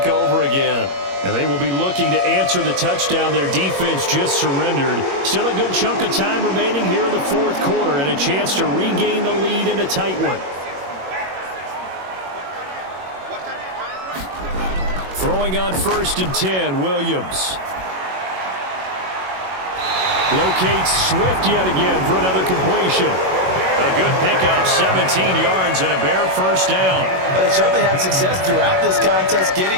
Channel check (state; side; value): late; left; 21 ms